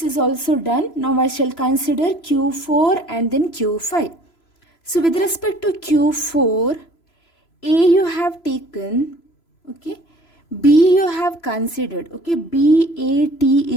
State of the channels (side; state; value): right; late; 3.0 ms